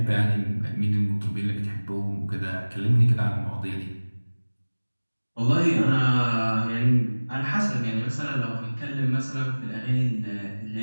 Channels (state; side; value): inverted; both; correlation -1.00